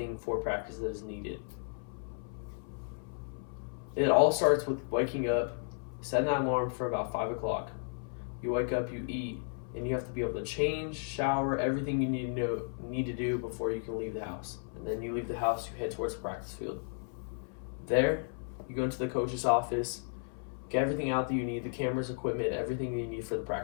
for practice that is needed. It all starts with waking up, setting that alarm for about 5 o'clock. You wake up, you eat, and you have to be able to change, shower, everything you need to do before you can leave the house. And then you leave the house, you head towards the practice field. There, you go into the coach's office, get everything out that you need, the cameras, equipment, everything you need for the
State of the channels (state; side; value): silent; right; 55 dB below the other